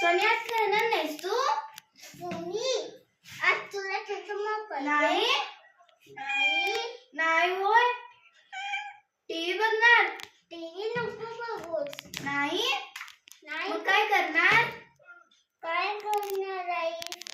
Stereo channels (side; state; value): both; identical; correlation 1.00